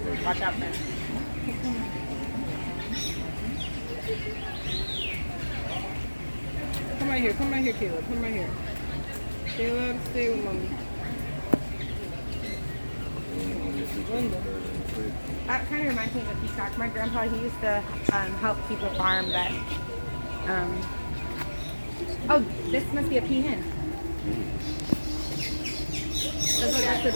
Watch out, man. Come right here, Caleb. Come right here. Caleb, stay with mommy. That kind of reminds me of a peacock. My grandpa, he used to help keep a farm that. Oh, this must be a peahen.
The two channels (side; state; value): both; inverted; correlation -1.00